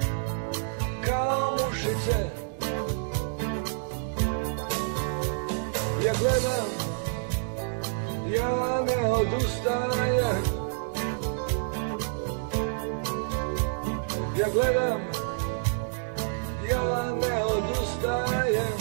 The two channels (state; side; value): silent; left; digital silence